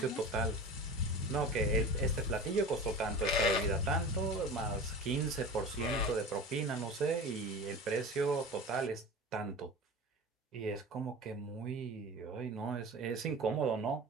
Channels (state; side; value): normal; both; correlation 0.33